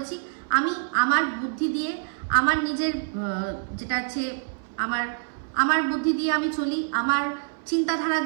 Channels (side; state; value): left; silent; 61 dB below the other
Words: আমি আমার বুদ্ধি দিয়ে, আমার নিজের যেটা আছে আমার বুদ্ধি দিয়ে আমি চলি, আমার চিন্তাধারা